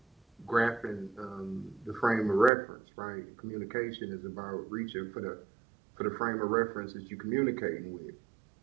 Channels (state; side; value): drops out; left; at 2.5 s